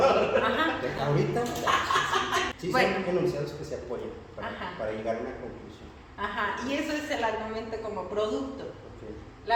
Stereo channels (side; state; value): both; identical; correlation 1.00